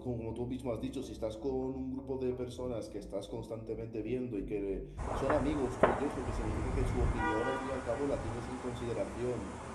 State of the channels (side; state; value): both; identical; correlation 1.00